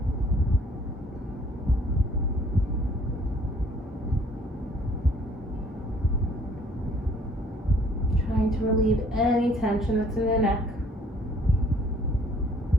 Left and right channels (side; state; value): both; normal; correlation 0.58